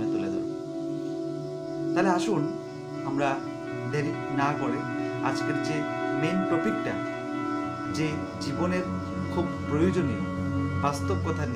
তুলে ধরব। তাহলে আসুন আমরা দেরি না করে আজকের যে মেন টপিকটা, যে জীবনের খুব প্রয়োজনীয় বাস্তব কথা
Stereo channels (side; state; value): both; identical; correlation 1.00